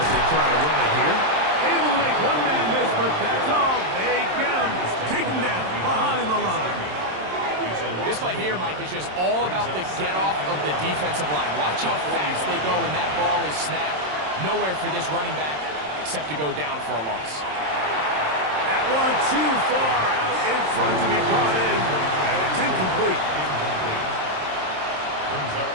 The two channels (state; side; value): late; left; 27 ms